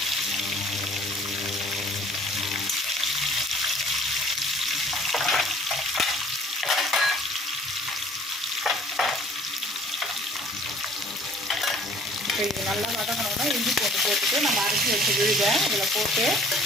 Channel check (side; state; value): both; normal; correlation 0.54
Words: இது நல்லா வதங்கணும்னா இஞ்சி போட்டுட்டு நம்ம அரைச்சி வச்சு விழுதை இதில் போட்டு